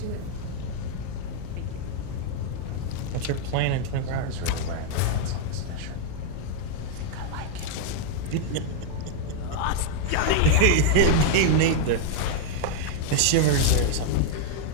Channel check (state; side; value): different; both; correlation 0.00